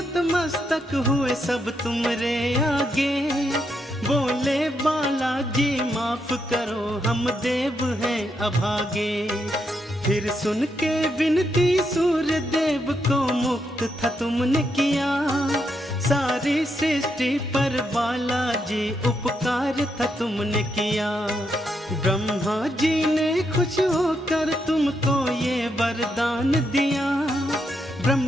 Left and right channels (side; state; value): both; normal; correlation 0.80